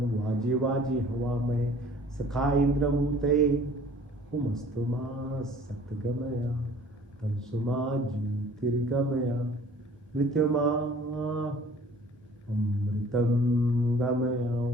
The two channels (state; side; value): normal; both; correlation 0.51